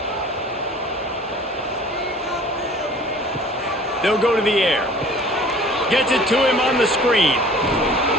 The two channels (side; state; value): both; normal; correlation 0.47